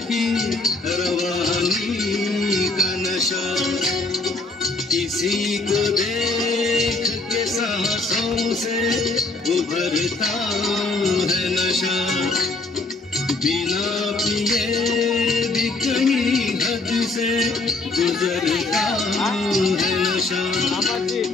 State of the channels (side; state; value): right; quieter; 3.3 dB